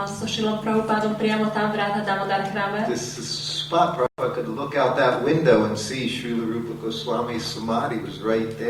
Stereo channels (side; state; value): both; identical; correlation 1.00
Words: so Srilom Prabhupádom priamo tam v Radha Damodar chráme. This spot, Prabhupada could look out that window and see Srila Rupa Goswami's samadhi was right